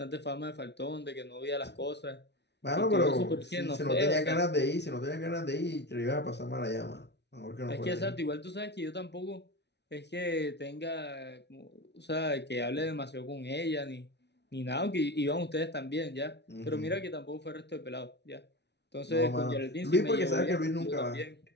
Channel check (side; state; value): right; late; 0.50 ms